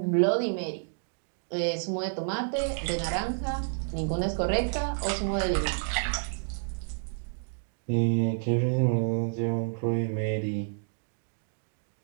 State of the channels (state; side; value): silent; left; digital silence